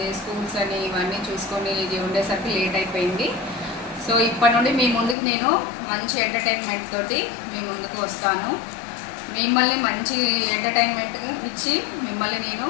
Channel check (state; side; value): drops out; right; at 5.2 s